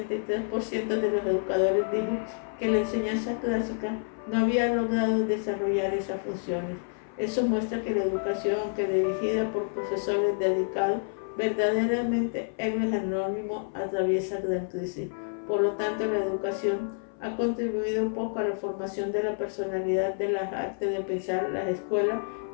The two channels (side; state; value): right; silent; 56 dB below the other